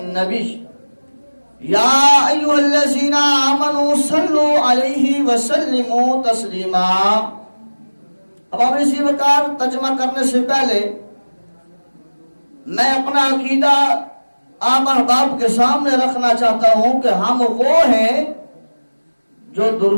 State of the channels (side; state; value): both; inverted; correlation -1.00